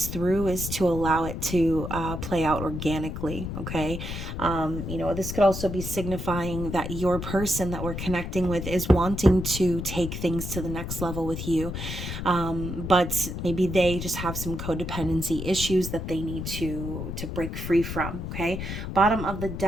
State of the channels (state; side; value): noise; left; rumble, 6 dB below the sound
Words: through is to allow it to play out organically. Okay. This could also be signifying that your person that we're connecting with is wanting to take things to the next level with you. But maybe they just have some codependency issues that they need to break free from. Okay. Bottom of the